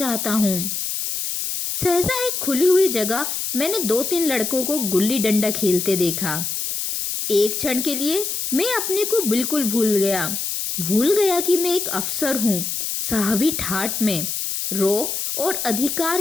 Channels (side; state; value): left; noise; hiss, 3 dB below the sound